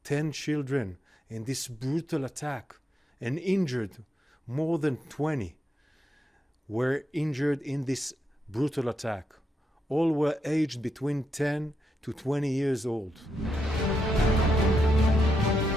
10 children in this brutal attack and injured more than 20 were injured in this brutal attack. All were aged between 10 to 20 years old.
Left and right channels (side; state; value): both; normal; correlation 0.83